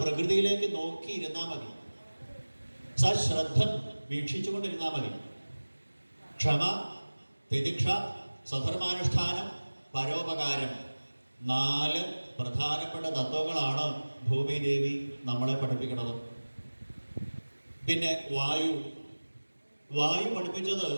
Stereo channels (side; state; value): both; inverted; correlation -1.00